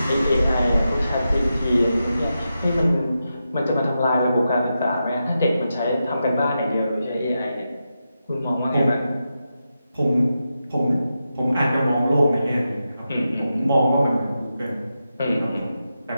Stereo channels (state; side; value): inverted; both; correlation -0.88